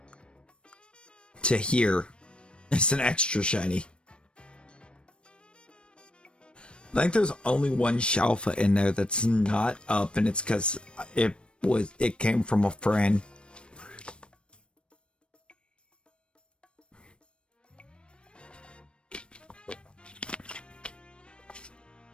to here is an extra shiny. I think there's only one Shalpha in there that's not up, and it's because it came from a friend.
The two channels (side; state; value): right; late; 0.057 ms